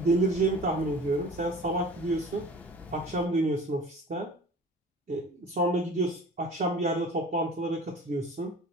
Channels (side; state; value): both; normal; correlation 0.42